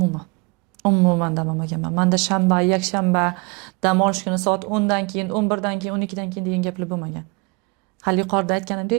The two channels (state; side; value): quieter; left; 29.3 dB